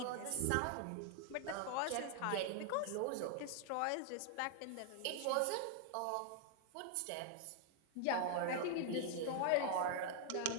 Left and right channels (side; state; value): both; different; correlation 0.00